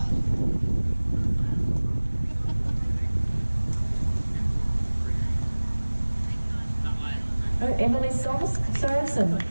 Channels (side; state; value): both; inverted; correlation -1.00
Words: Oh, Emily Sorensen.